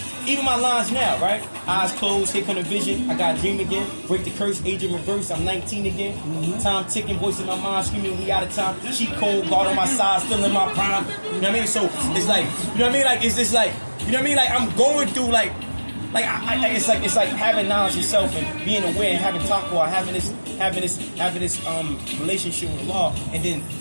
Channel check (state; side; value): inverted; both; correlation -1.00